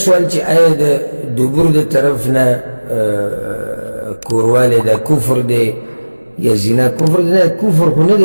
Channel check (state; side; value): inverted; both; correlation -1.00